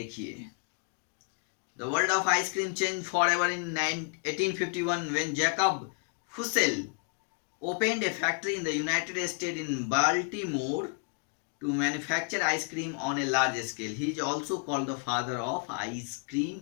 the world of ice cream change for ever in 1851 when Jacob Fussell opened a factory in the United States in Baltimore to manufacture ice cream on a large scale. He is also called the father of ice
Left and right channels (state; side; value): quieter; right; 37.7 dB